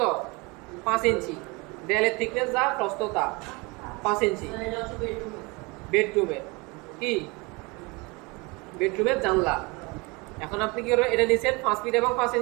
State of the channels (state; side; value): quieter; left; 26.8 dB